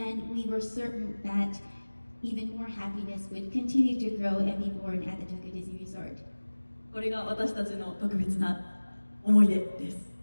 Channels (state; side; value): inverted; both; correlation -1.00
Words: we were certain that even more happiness would continue to grow and be born at the Tokyo Disney Resort. これが私たちの特別な思い出です。